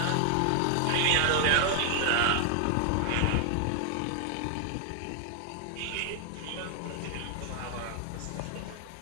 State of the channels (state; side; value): different; both; correlation 0.00